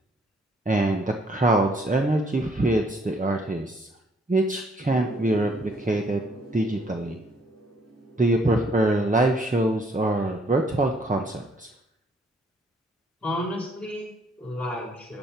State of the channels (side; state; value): both; normal; correlation 0.65